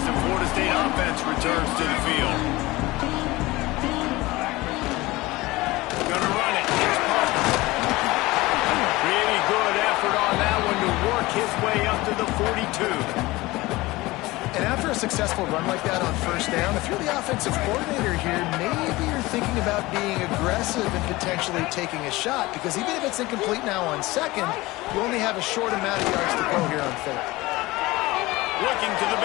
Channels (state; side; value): quieter; right; 20.3 dB